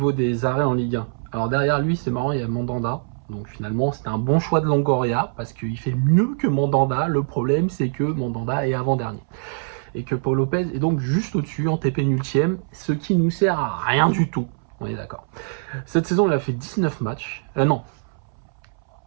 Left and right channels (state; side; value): silent; left; 63 dB below the other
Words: des arrêts en Ligue 1. Alors derrière lui, c'est marrant, il y a Mandanda, donc finalement, c'était un bon choix de Longoria, parce qu'il fait mieux que Mandanda. Le problème, c'est que Mandanda est avant-dernier. Et que Pau Lopez est donc juste au-dessus, en TP nultième, ce qui nous sert à rien du tout. On est d'accord. Cette saison, il a fait 19 matchs.